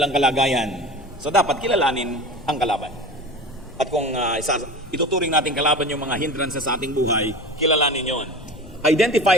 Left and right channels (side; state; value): left; noise; rumble, 19 dB below the sound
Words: kalagayan. So dapat kilalanin ang kalaban. At kung ituturing natin kalaban yung mga hindrances sa ating buhay, kilalanin yon.